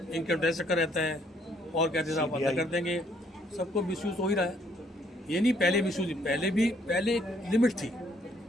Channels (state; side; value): normal; both; correlation 0.66